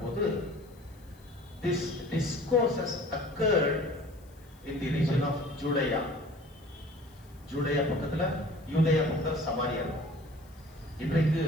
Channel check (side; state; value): left; noise; hiss, 29 dB below the sound